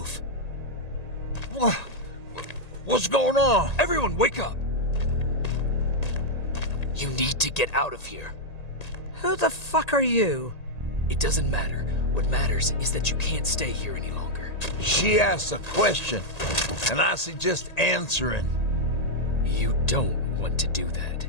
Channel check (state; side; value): late; right; 1.8 ms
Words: What's going on? Everyone, wake up! You need to get out of here. Who the fuck are you? It doesn't matter. What matters is that you can't stay here any longer. She asked a question, and I suggest answering. You don't want to do that.